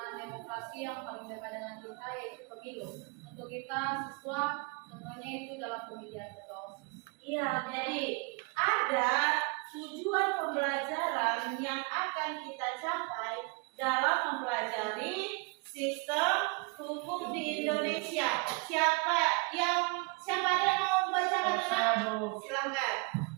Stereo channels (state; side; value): quieter; left; 31.2 dB